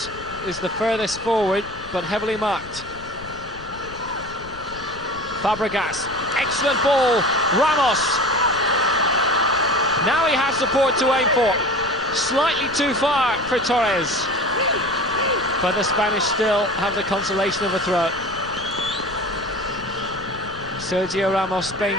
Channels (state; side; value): noise; left; rumble, 17 dB below the sound